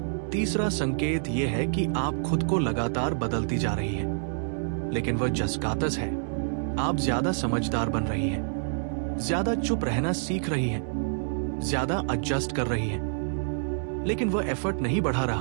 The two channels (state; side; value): silent; left; digital silence